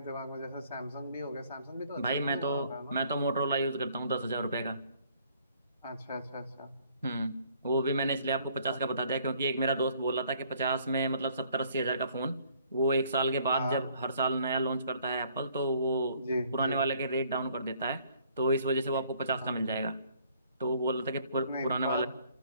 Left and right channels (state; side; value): inverted; both; correlation -0.62